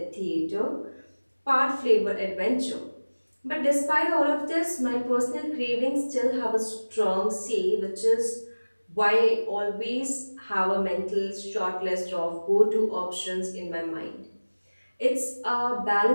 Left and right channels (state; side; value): inverted; both; correlation -1.00